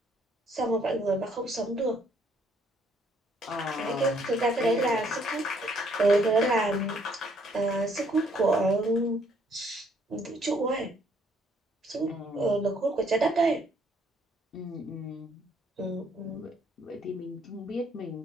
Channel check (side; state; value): both; normal; correlation 0.66